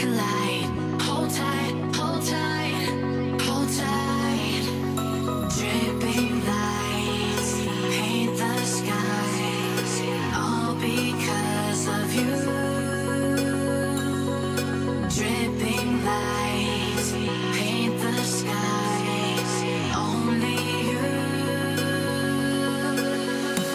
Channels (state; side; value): identical; both; correlation 1.00